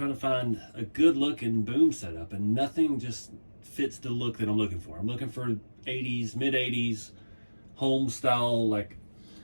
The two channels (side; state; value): both; inverted; correlation -1.00